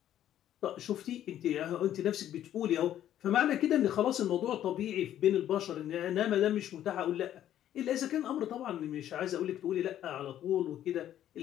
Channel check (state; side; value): quieter; right; 11.5 dB